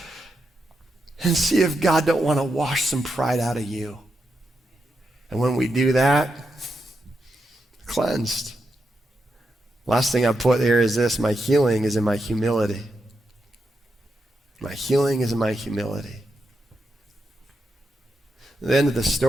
and see if God don't want to wash some pride out of you. And when we do that, cleansed. Last thing I put here is this: my healing is in my humility. My healing is in my humility. At the end of the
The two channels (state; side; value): normal; both; correlation 0.85